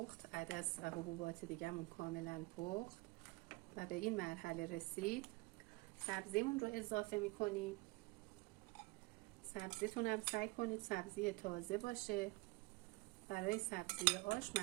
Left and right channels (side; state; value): left; quieter; 24.0 dB